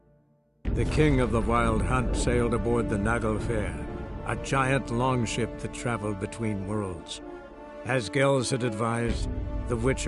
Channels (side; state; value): both; identical; correlation 1.00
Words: The king of the Wild Hunt sailed aboard the Naglfar, a giant longship that traveled between worlds. As Gels had advised, the